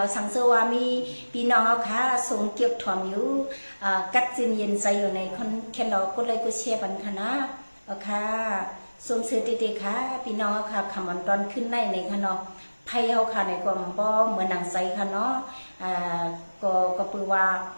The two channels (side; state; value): both; inverted; correlation -1.00